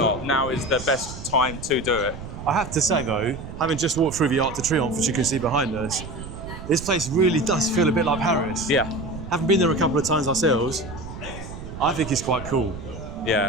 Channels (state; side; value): noise; right; rumble, 11 dB below the sound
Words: Now is the best time to do it. I have to say though, having just walked through the Arc de Triomphe, which you can see behind us, this place really does feel a bit like Paris. Yeah. Having been there a couple of times ourselves, I think it's quite cool.